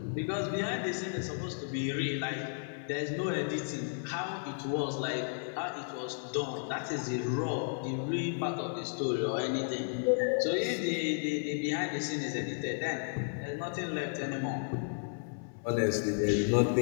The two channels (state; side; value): silent; right; 55 dB below the other